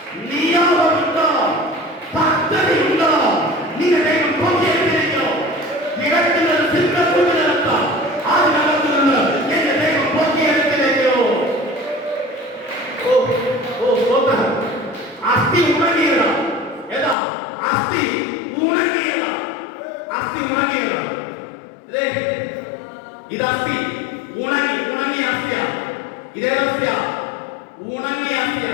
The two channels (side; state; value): right; drops out; at 17.2 s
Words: നിയോഗമുണ്ടോ? പദ്ധതിയുണ്ടോ? നിന്റെ ദൈവം പൊട്ടിയെടുത്തിരിക്കോ? ഇടയ്ക്കുന്നത് സിംഹക്കൂട്ടിനകത്ത്, അതിനകത്ത് നിന്ന് എന്റെ ദൈവം പൊട്ടിയെടുത്തിരിക്കോ? അസ്ഥി ഉണങ്ങിയതാ. ഏതാ അസ്ഥി? ഉണങ്ങിയതാ. അസ്ഥി ഉണങ്ങിയതാ. ഇത് അസ്ഥി ഉണങ്ങിയ അസ്ഥിയാ. ഇതേത് അസ്ഥിയാ? ഉണങ്ങിയ അസ്ഥിയാ.